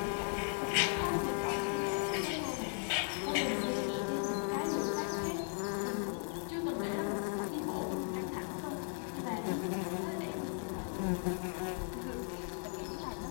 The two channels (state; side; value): silent; right; 53 dB below the other